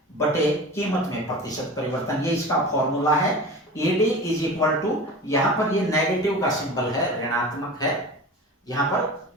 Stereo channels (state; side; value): normal; both; correlation 0.34